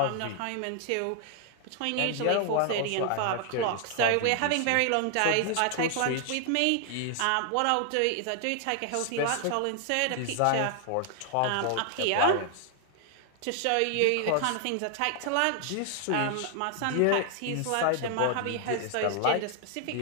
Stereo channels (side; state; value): both; different; correlation 0.00